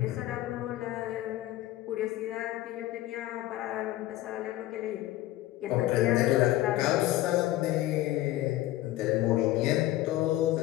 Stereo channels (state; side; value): quieter; right; 15.6 dB